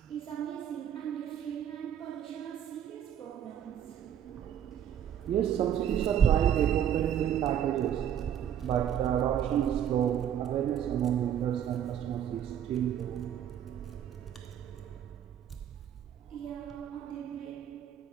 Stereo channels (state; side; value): quieter; left; 9.6 dB